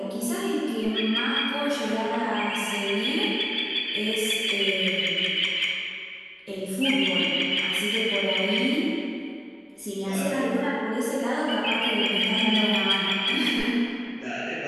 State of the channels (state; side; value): identical; both; correlation 1.00